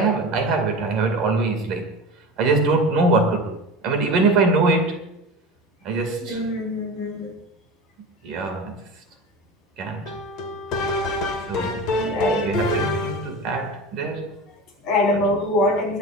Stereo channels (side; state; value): both; normal; correlation 0.30